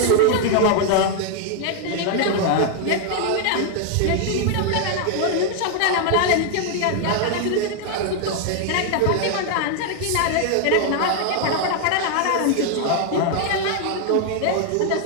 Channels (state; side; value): different; both; correlation 0.00